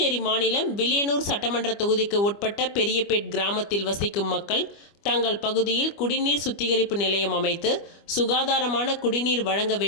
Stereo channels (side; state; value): right; late; 25 ms